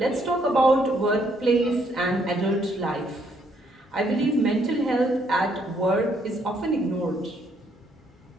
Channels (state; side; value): normal; both; correlation 0.70